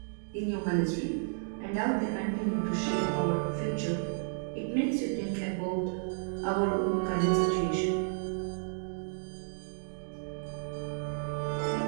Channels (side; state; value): left; silent; digital silence